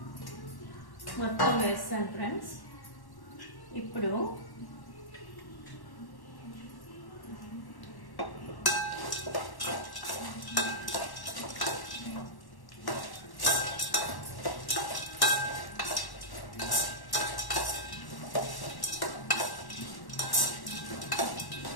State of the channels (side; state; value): right; late; 1.1 ms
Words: మొత్తం వేస్తాను ఫ్రెండ్స్. ఇప్పుడు